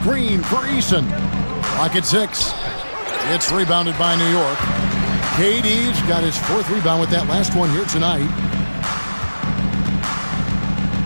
for Eason. Clock at 6. It's rebounded by New York. KD's got his 4th rebound with that last one here tonight.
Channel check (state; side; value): inverted; both; correlation -1.00